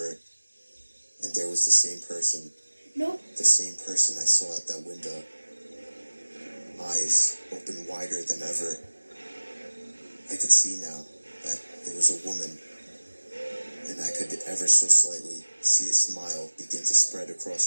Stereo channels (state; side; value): inverted; both; correlation -1.00